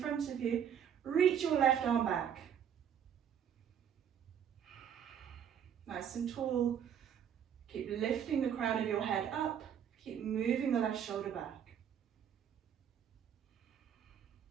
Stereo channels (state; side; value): quieter; left; 8.7 dB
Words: of you. Reach your left arm back. Nice and tall. Keep lifting the crown of your head up. Keep moving the left shoulder back.